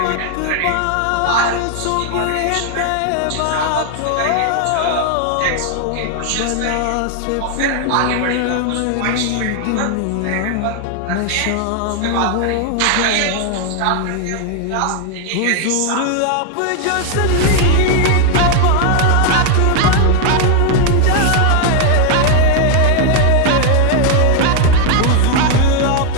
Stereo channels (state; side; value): different; both; correlation 0.00